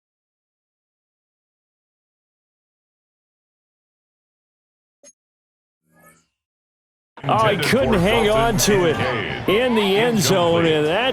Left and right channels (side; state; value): both; identical; correlation 1.00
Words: Oh, he couldn't hang on to it in the end zone, and